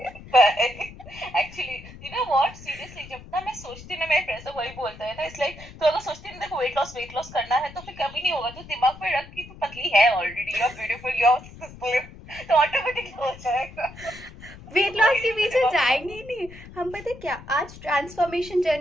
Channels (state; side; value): noise; left; rumble, 17 dB below the sound